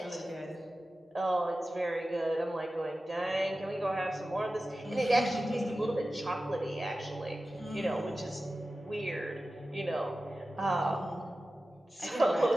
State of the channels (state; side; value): normal; both; correlation 0.95